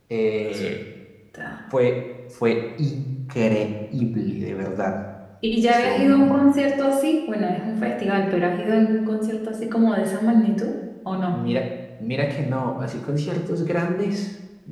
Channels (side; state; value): both; identical; correlation 1.00